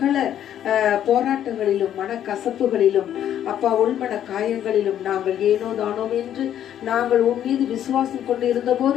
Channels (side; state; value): right; quieter; 10.6 dB